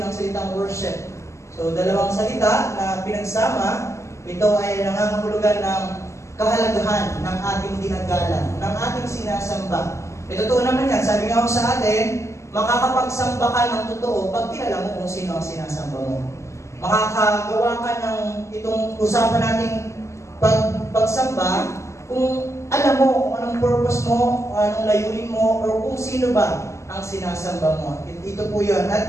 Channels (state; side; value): late; right; 0.14 ms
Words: ng salitang worship. So, dalawang salita na pinagsama, ito ay nangangahulugan ng kahalagahan ng ating dinagalan, ng ating sinasamba. Ito totoo naman yan, sabi nga ako sa atin, makakapagsamba ka ng totoo pag kilala mo kung sino ang sinasamba mo. Makakagawa ka ng itong usapan nating pagsamba kung alam mo kung anong purpose mo, anong layunin mo, or kung sino ba ang sinasamba mo. Ito po yun.